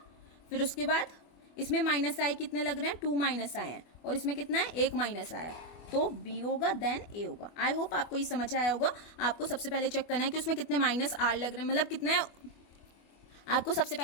फिर उसके बाद इसमें -I कितने लग रहे हैं, 2 -I हैं और इसमें कितना है, 1 -I है, तो B होगा, देन A होगा. आई होप आपको ये समझ आया होगा. आपको सबसे पहले चेक करना है कि उसमें कितने -R लग रहे हैं, मतलब कितने आपको सबसे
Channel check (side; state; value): right; late; 24 ms